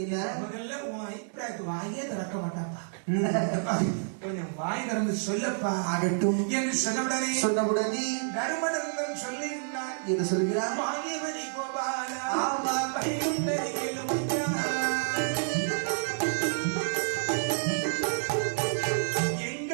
என்ன முதல்ல உன் அபிப்பிராயத்தை வாயே திறக்க மாட்டாப்பா. கொஞ்சம் வாய் திறந்து சொல்லப்பா. ஆகட்டும் என்று சொன்னவுடனே தர்மநந்தன் சொல்லுகிறார். என்று சொல்கிறார். வாங்கியவனை கோபாலா ஆமா பைகுண்டரை கேளுமையா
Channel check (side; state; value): left; silent; digital silence